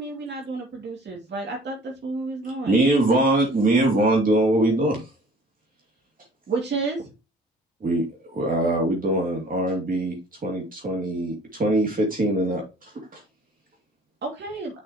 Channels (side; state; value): both; normal; correlation 0.51